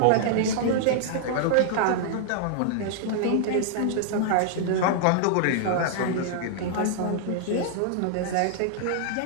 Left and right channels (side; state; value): both; different; correlation -0.01